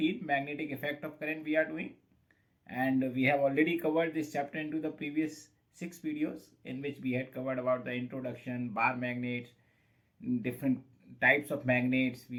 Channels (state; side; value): identical; both; correlation 1.00